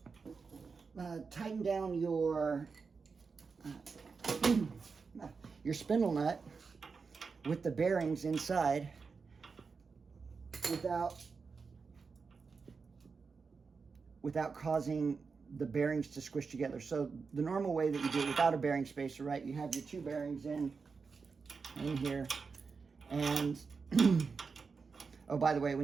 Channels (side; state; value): left; quieter; 5.0 dB